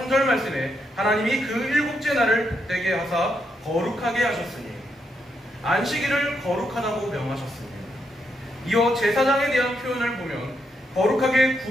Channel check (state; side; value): normal; both; correlation 0.80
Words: 말씀에 하나님이 그 일곱째 날을 복되게 하사 거룩하게 하셨으니 안식일을 거룩하다고 명하셨습니다. 이어 제사장에 대한 표현을 보면 거룩하게